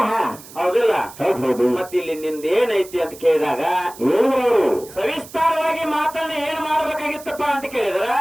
ಹಾ ಹೌದಿಲ್ಲ ಹೌದು ಹೌದು ಮತ್ತೆ ಇಲ್ಲಿ ನಿಂದ ಏನೈತಿ ಅಂತ ಕೇಳಿದಾಗ ಏನು ಅವರು ಸವಿಸ್ತಾರವಾಗಿ ಮಾತನ್ನ ಏನ್ ಮಾಡ್ಬೇಕಾಗಿತ್ತಪ್ಪ ಅಂತ ಕೇಳಿದ್ರ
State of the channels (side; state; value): right; noise; hiss, 18 dB below the sound